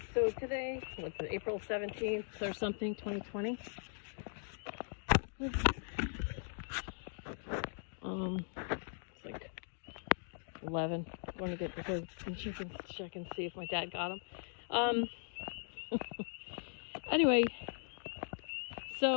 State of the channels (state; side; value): silent; right; digital silence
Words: So today, what's it? April 17th or something, 2020. It's like 11. I'm going to get the birds and chickens to check and see if my dad got them. Anyway,